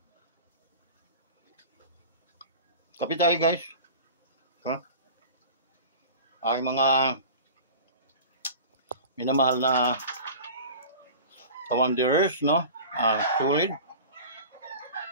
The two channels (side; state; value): both; inverted; correlation -0.37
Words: Kape tayo guys. Aking mga minamahal na commanders, no? Solid.